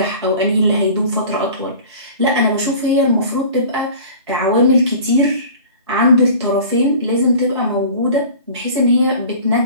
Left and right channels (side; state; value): both; inverted; correlation -0.42